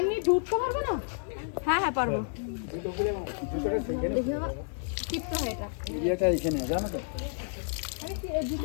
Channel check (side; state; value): right; silent; digital silence